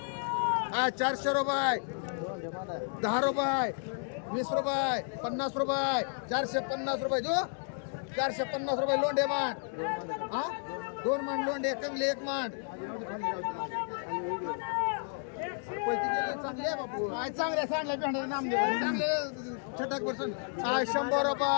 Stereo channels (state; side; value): silent; right; 56 dB below the other